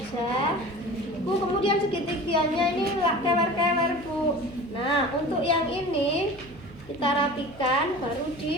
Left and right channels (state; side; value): noise; right; hum, 21 dB below the sound